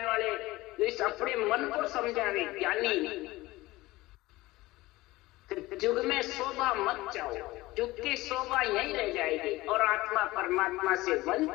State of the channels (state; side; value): quieter; right; 19.2 dB